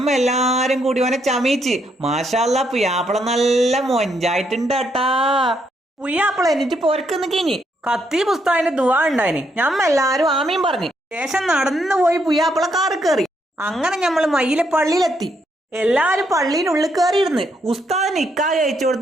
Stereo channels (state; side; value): normal; both; correlation 0.75